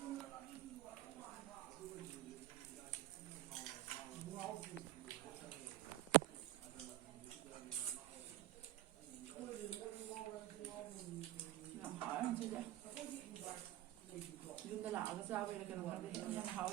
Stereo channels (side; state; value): left; quieter; 15.9 dB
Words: ꯌꯥꯝ ꯍꯥꯎꯋꯦ ꯉꯁꯤꯁꯦ ꯌꯨꯝꯗ ꯂꯥꯛꯑꯒ ꯆꯥꯕꯩꯔ ꯀꯩꯅꯣ ꯈꯪꯗꯦ ꯌꯥꯝ